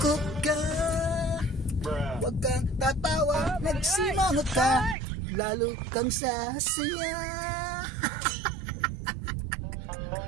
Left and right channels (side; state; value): left; drops out; at 5.0 s